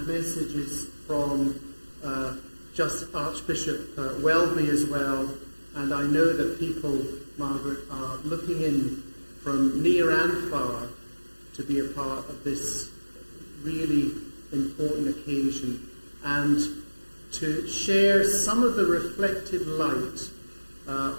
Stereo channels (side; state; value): both; inverted; correlation -1.00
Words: messages from just Archbishop Welby as well. And I know that people, Margaret, are looking in from near and far to be a part of this really important occasion and to share some of the reflected light